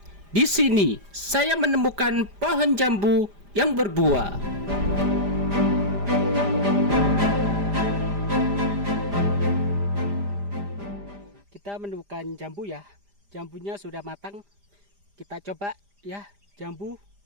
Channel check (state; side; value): late; left; 5.0 ms